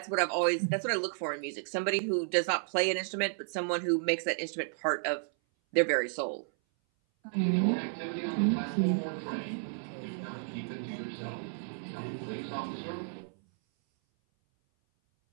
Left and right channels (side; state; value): left; silent; 56 dB below the other